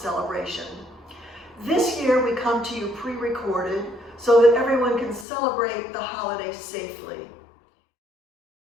This year we come to you pre-recorded so that everyone can celebrate the holiday safely.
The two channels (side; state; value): right; drops out; at 5.2 s